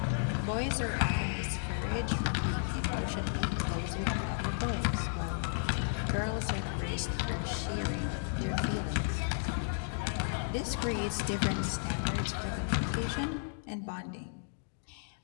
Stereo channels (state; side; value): silent; right; digital silence